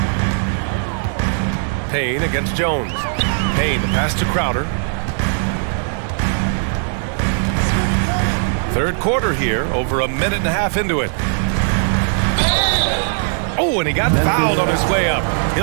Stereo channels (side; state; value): left; silent; 67 dB below the other